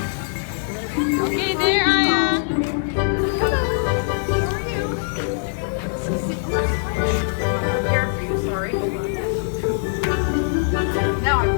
Okay, there, Aya. Prepare for you, sorry. Now I'm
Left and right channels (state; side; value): silent; right; 64 dB below the other